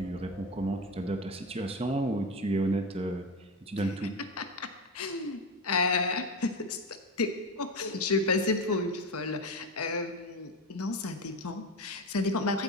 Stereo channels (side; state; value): both; normal; correlation 0.20